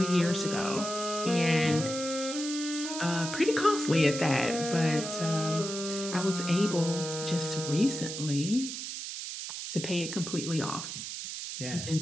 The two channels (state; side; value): noise; right; hiss, 6 dB below the sound